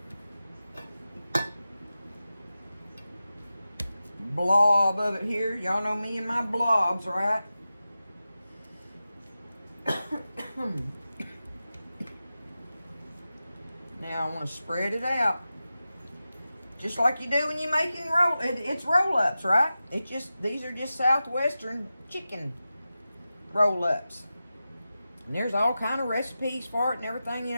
blob of it here. Y'all know me and my blobs, right? Now I want to spread it out. Just like you do when you're making it's roll-ups, right? These are just Southwestern chicken roll-ups. And there's all kind of recipes for it and everything, you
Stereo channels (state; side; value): inverted; both; correlation -0.93